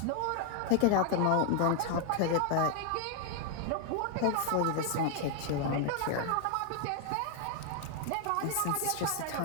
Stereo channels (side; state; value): both; different; correlation 0.00